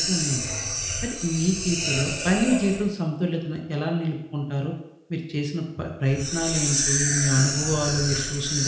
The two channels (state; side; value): identical; both; correlation 1.00